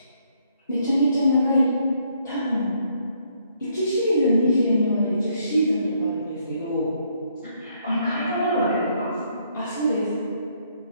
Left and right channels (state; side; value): inverted; both; correlation -0.70